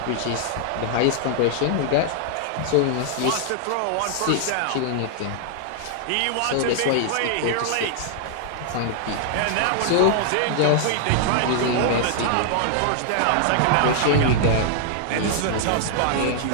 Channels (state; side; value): different; both; correlation 0.00